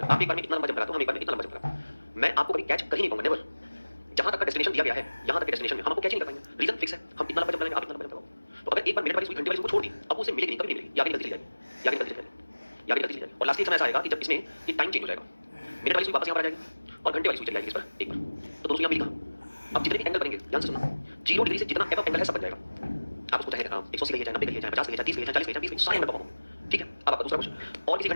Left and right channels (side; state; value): both; inverted; correlation -1.00